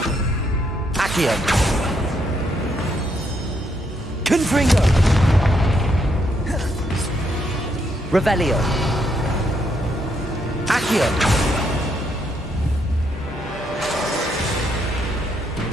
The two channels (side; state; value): both; normal; correlation 0.75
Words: Accio. Confringo. Revelio. Accio.